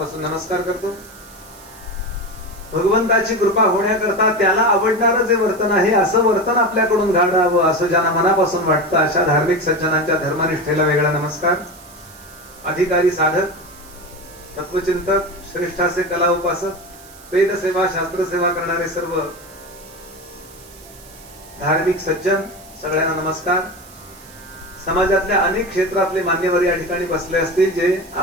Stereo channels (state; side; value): noise; right; hiss, 22 dB below the sound